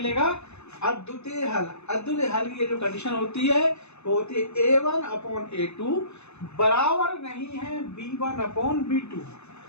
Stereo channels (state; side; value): late; right; 0.81 ms